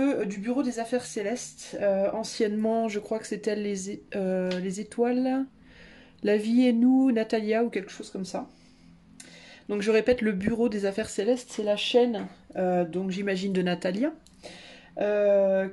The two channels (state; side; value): identical; both; correlation 1.00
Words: Bureau des Affaires Célestes. Anciennement, je crois que c'était les étoiles, la vie et nous, Natalia ou quelque chose comme ça. Donc je répète, le Bureau des Affaires Célestes, c'est la chaîne, donc j'imagine de Natalia,